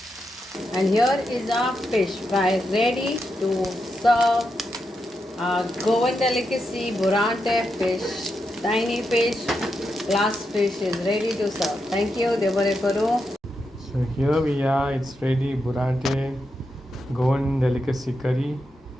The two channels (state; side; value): normal; both; correlation 0.85